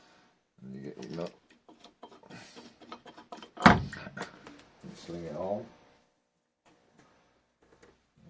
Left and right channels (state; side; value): identical; both; correlation 1.00